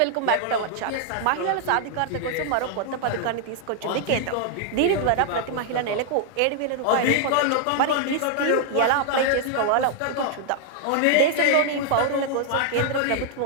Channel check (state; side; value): different; both; correlation 0.00